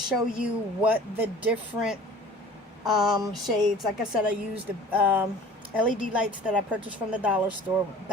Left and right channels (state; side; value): normal; both; correlation 0.45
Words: you what the different shades, like I said, I used the LED lights that I purchased from the dollar store,